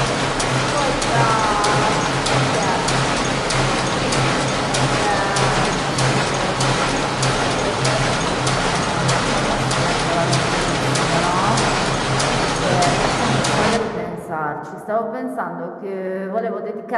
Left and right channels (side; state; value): both; identical; correlation 1.00